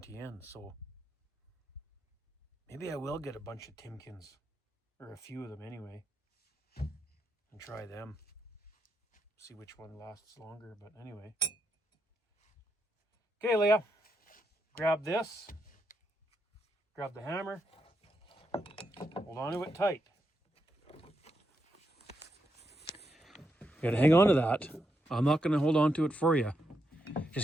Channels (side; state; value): both; normal; correlation 0.82